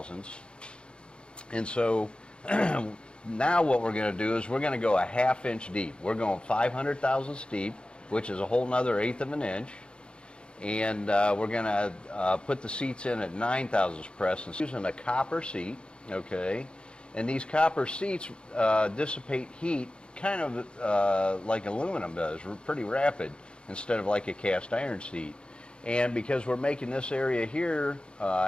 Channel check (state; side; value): late; right; 0.054 ms